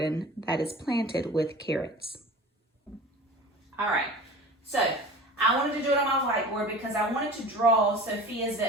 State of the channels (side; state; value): both; normal; correlation 0.38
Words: that is planted with carrots. All right, so I wanted to do it on my whiteboard because I wanted to draw Sophia's